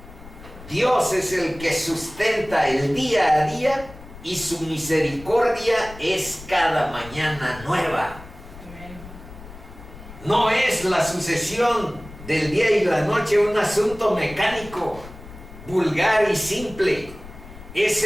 Dios es el que sustenta el día a día, y su misericordia es cada mañana nueva. No es la sucesión del día y la noche un asunto mecánico, vulgar y simple. Es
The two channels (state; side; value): noise; left; rumble, 17 dB below the sound